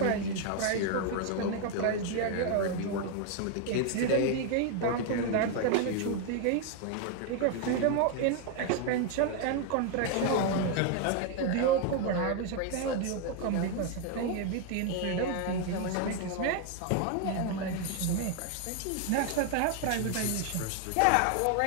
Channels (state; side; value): different; both; correlation 0.01